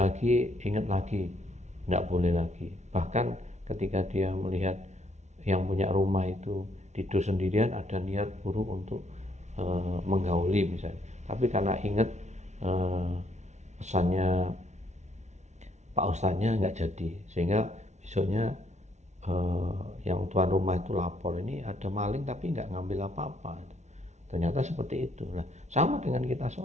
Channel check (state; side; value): late; left; 0.33 ms